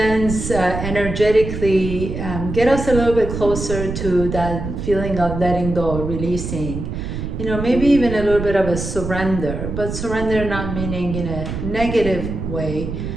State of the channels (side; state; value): right; noise; rumble, 5 dB below the sound